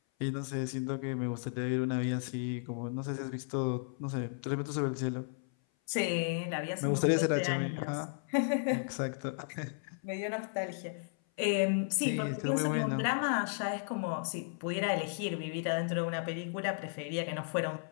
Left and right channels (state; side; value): silent; right; 55 dB below the other